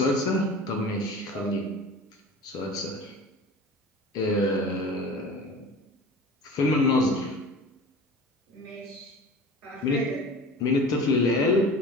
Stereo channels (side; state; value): both; normal; correlation 0.38